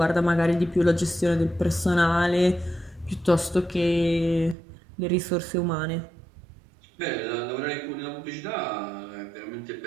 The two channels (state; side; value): drops out; left; at 4.5 s